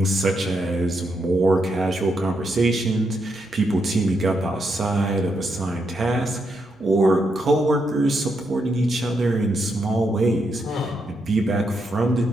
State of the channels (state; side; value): noise; left; rumble, 30 dB below the sound